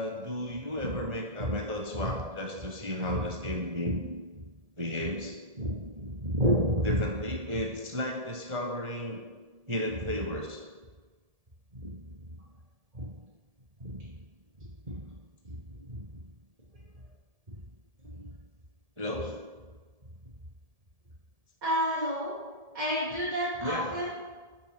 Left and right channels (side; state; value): left; late; 1.7 ms